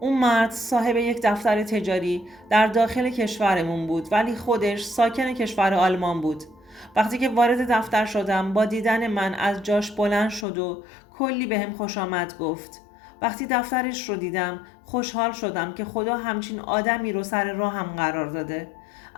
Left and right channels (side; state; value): right; drops out; at 10.5 s